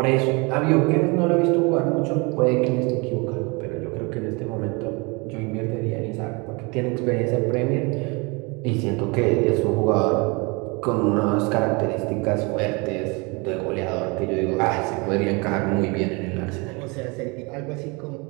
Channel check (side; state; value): left; quieter; 28.7 dB